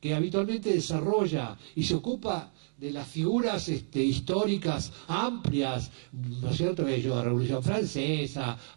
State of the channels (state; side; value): silent; left; digital silence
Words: que habitualmente desarrolla y se ocupa de las figuras históricas amplias, ¿no es cierto? La Revolución Francesa,